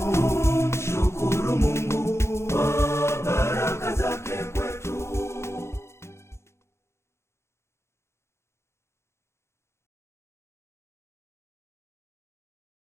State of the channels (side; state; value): right; late; 0.13 ms